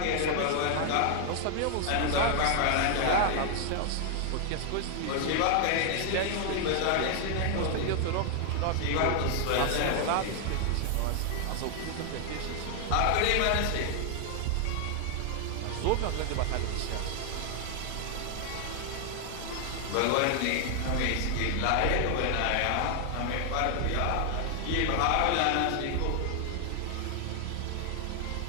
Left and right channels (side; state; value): both; different; correlation 0.00